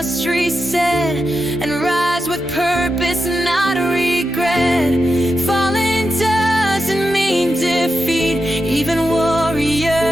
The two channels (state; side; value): normal; both; correlation 0.88